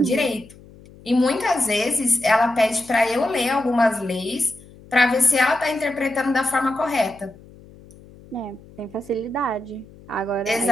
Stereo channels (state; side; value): noise; left; hum, 22 dB below the sound